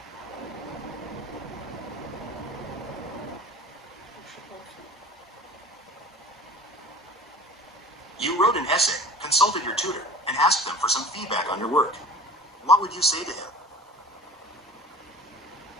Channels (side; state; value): both; normal; correlation 0.41